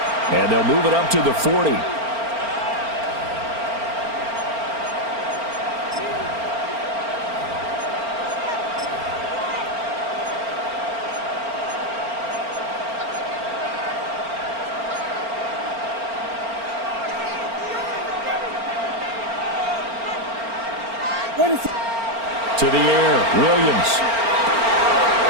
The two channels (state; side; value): late; left; 4.4 ms